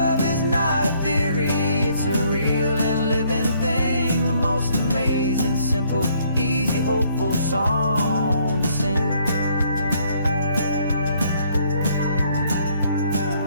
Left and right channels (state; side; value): inverted; both; correlation -0.66